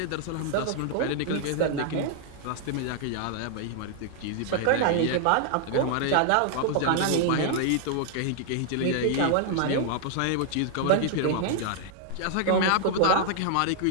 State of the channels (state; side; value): different; both; correlation 0.00